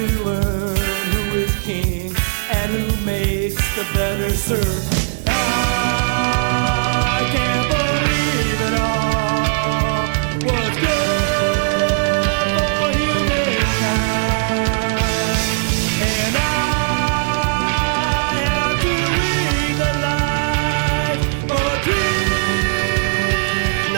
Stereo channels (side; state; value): left; silent; digital silence